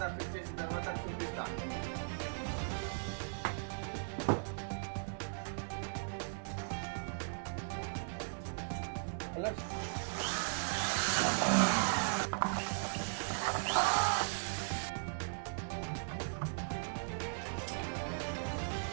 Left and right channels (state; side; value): silent; left; digital silence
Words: ఫిట్ చేసిన తర్వాత చూపిస్తాము.